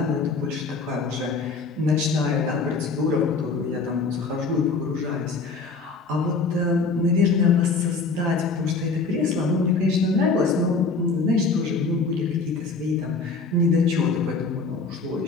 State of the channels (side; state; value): right; quieter; 4.2 dB